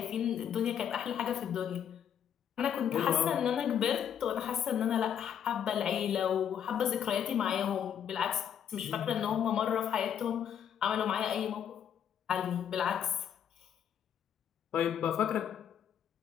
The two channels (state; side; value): quieter; right; 8.8 dB